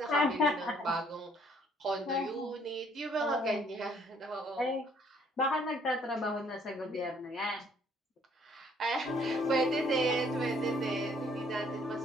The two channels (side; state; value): both; normal; correlation 0.63